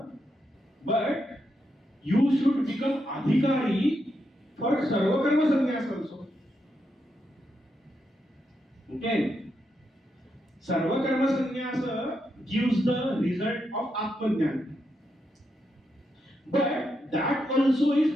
but you should become adhikari for sarva karma sannyasa also. Okay? Sarva karma sannyasa gives the result of atma jnana, but that also is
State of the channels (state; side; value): normal; both; correlation 0.82